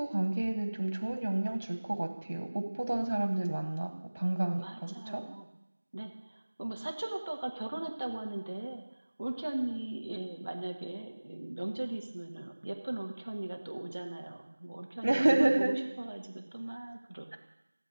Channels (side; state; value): both; inverted; correlation -1.00